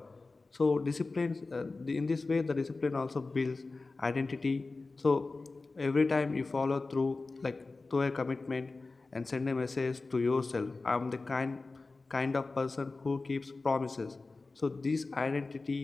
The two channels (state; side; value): quieter; right; 3.6 dB